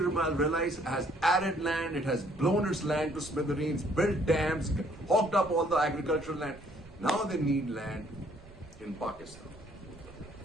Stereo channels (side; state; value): right; noise; rumble, 21 dB below the sound